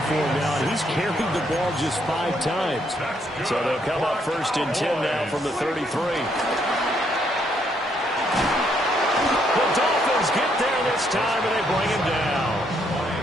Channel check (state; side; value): normal; both; correlation 0.72